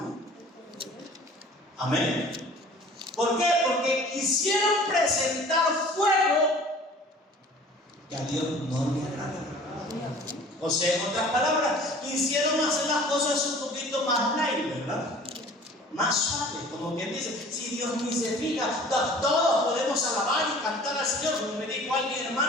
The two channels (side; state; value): both; normal; correlation 0.47